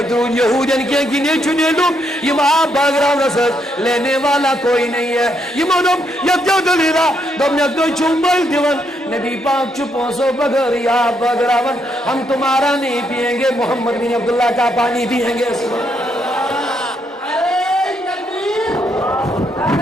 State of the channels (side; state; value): both; normal; correlation 0.76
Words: درود یہودین کے گنے چنے لوگ یم آب باغراو رسد لینے والا کوئی نہیں ہے یمو دو یت دلیرا دومنگ دو چومبل دیون نبی پاک چپوں سو بغیر یا بغراون ہم تمہارا نہیں پیئیں گے محمد بن عبداللہ کا پانی پیئیں گے